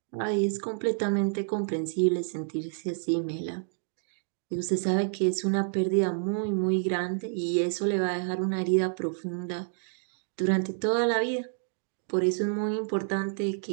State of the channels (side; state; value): left; silent; digital silence